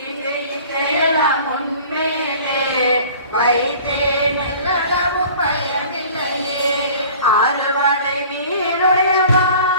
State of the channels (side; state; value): both; inverted; correlation -0.46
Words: இங்கு இச்சையெல்லாம் உன்மேலே வைத்தேன் எல்லளவும் பயமில்லையே ஆறுவடை வீருடையவா